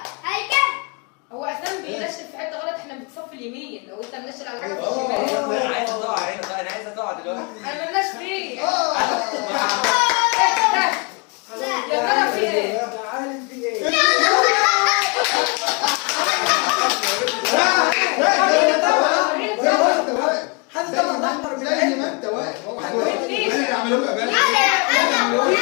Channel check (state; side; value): quieter; right; 31.8 dB